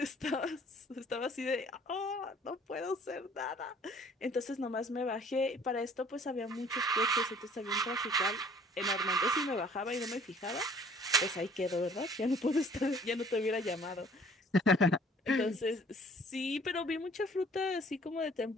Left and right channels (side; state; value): both; normal; correlation 0.54